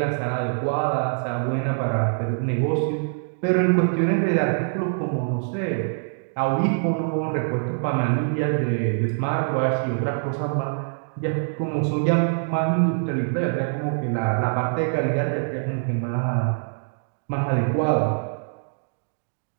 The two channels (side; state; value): left; silent; digital silence